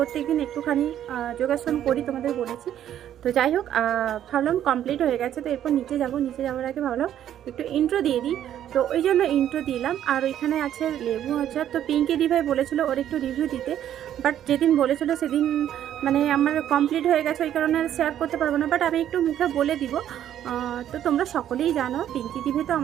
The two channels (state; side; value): quieter; left; 10.9 dB